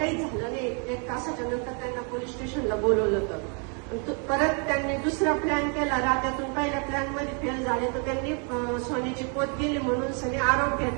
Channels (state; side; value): quieter; left; 37.5 dB